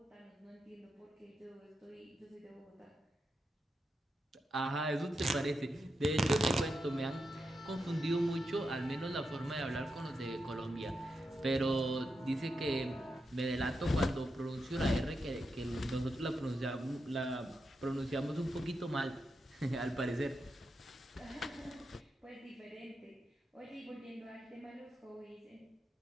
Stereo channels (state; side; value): normal; both; correlation 0.86